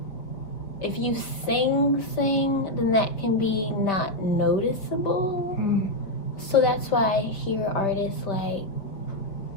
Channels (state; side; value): late; right; 4.8 ms